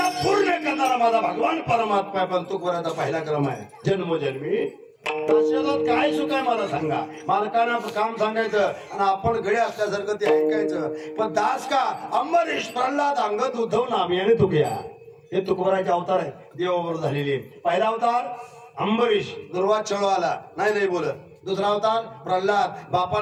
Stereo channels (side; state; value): both; identical; correlation 1.00